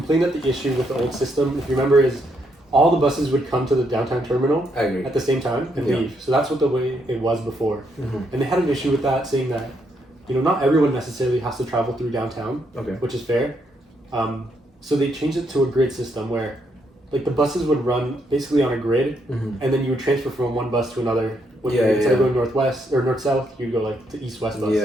that the issue with the old system, if you remember, is all the buses would come to the downtown terminal at the same time and leave. So that's what the way it was before. And they had an issue with that, saying that, you know, not everyone necessarily has to travel through downtown, which is fair. So they changed it to a grid system where like the buses would run basically on a grid and then you would transfer from one bus to another Instead of going northwest or north-south, you'd go like to east-west bus. Yeah.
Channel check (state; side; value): normal; both; correlation 0.76